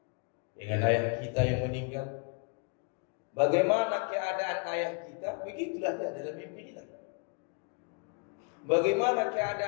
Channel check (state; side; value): quieter; right; 34.7 dB